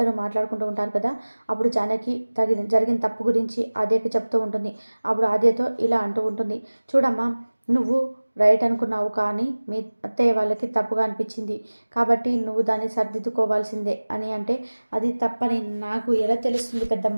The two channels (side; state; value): both; inverted; correlation -1.00